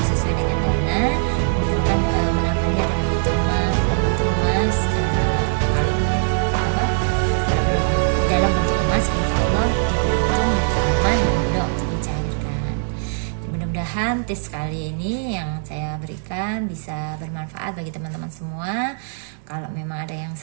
sesuai dengan dana, kumpulkan menabungnya dalam bentuk emas, kalau belum dalam bentuk emas, insya Allah lebih untung, lebih aman dan mudah untuk dicairkan. Mudah-mudahan tips kali ini yang saya berikan bisa bermanfaat bagi teman-teman semua. Kalau memang ada yang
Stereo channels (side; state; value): left; silent; digital silence